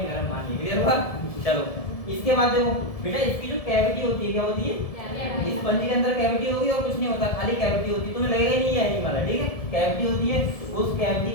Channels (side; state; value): right; late; 1.7 ms